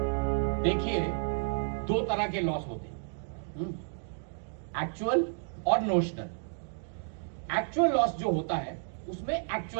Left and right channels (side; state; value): left; silent; 57 dB below the other